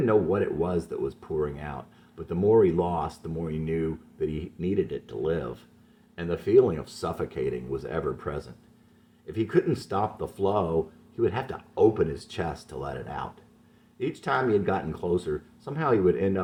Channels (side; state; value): both; identical; correlation 1.00